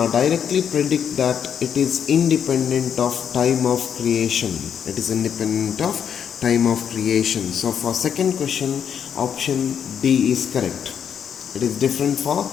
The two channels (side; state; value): right; quieter; 8.1 dB